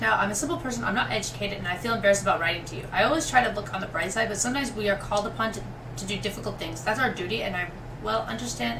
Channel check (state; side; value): identical; both; correlation 1.00